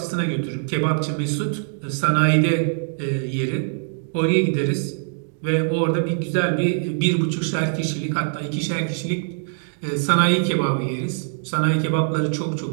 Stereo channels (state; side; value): silent; left; digital silence